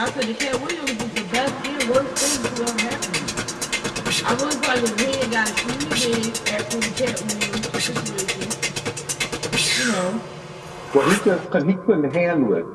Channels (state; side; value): identical; both; correlation 1.00